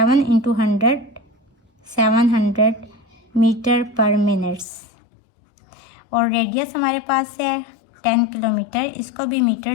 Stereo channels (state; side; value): drops out; right; at 4.7 s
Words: इंटू 100 700 मीटर पर मिनट्स। और रेडियस हमारे पास है 10 किलोमीटर, इसको भी